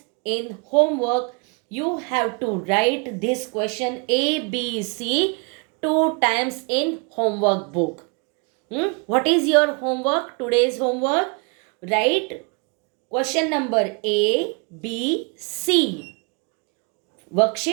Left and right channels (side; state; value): left; quieter; 33.9 dB